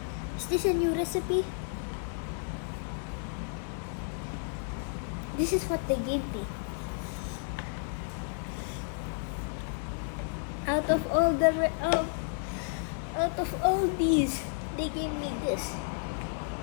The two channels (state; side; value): silent; right; 56 dB below the other